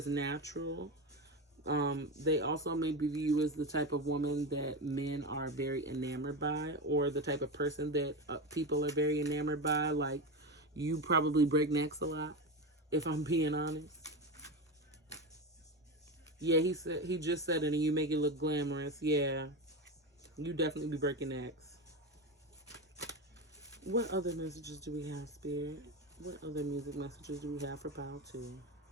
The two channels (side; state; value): both; normal; correlation 0.19